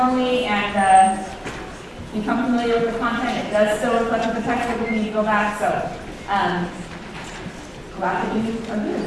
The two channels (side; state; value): both; identical; correlation 1.00